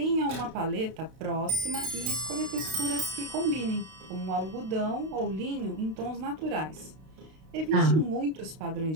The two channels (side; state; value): left; late; 32 ms